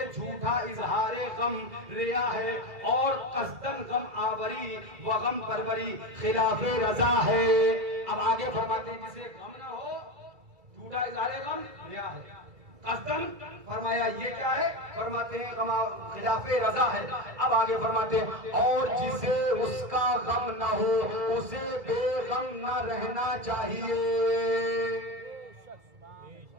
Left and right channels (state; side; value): late; left; 2.4 ms